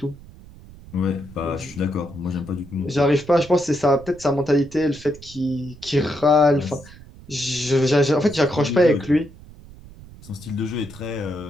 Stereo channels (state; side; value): noise; right; rumble, 19 dB below the sound